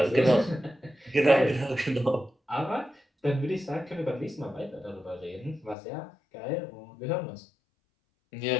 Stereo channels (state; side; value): drops out; right; at 5.8 s